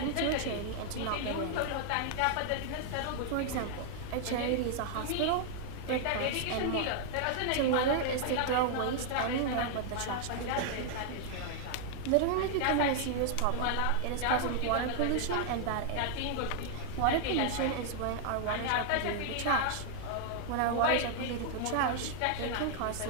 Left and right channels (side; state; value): both; different; correlation 0.00